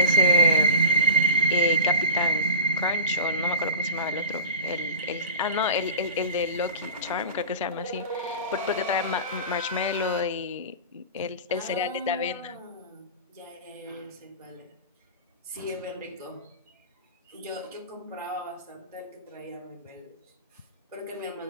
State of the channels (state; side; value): inverted; both; correlation -0.35